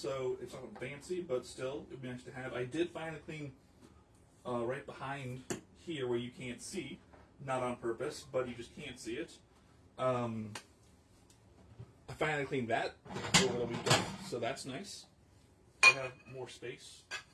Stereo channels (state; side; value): identical; both; correlation 1.00